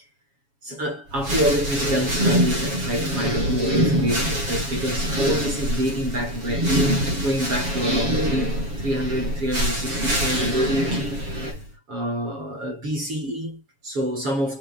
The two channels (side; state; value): left; late; 7.2 ms